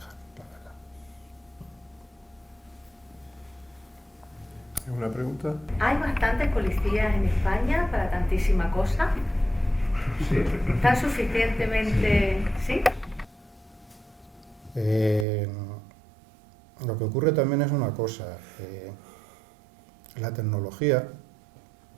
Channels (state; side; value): drops out; left; at 15.2 s